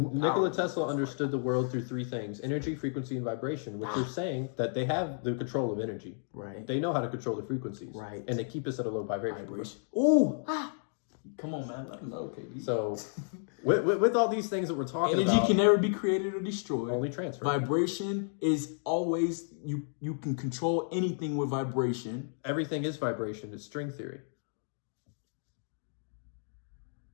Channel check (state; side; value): silent; right; digital silence